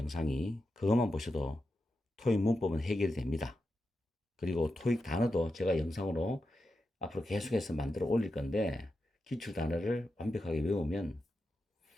그것만 보셔도 토익 문법은 해결이 됩니다. 그리고 토익 단어도 제가 영상으로 앞으로 계속해서 만들어 올릴 건데 기출 단어를 완벽하게 외우면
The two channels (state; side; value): normal; both; correlation 0.89